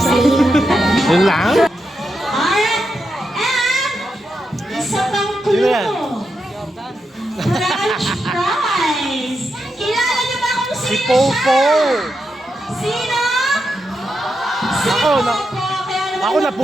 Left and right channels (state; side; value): normal; both; correlation 0.86